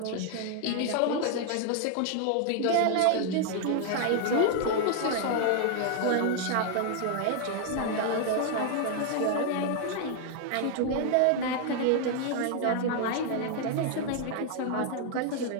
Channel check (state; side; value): different; both; correlation 0.00